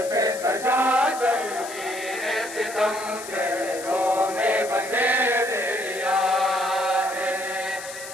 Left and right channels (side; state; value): left; noise; hiss, 12 dB below the sound